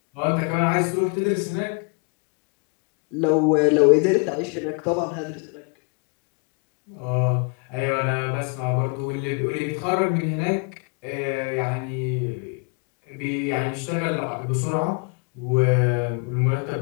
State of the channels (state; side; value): quieter; right; 35.8 dB